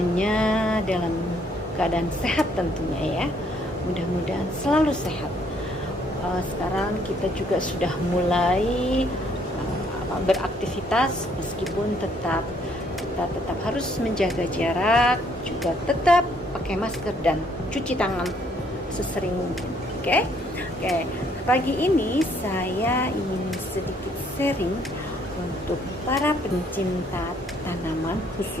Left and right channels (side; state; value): both; normal; correlation 0.66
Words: dalam keadaan sehat tentunya ya. Mudah-mudahan selalu sehat. Sekarang kita juga sudah mulai beraktivitas, meskipun kita tetap harus menjaga jarak, juga tetap pakai masker dan cuci tangan sesering mungkin. Oke? Oke. Pagi ini saya ingin sedikit sharing untuk para pencinta tanaman,